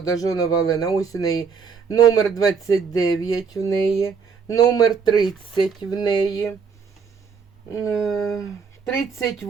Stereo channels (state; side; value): quieter; left; 5.8 dB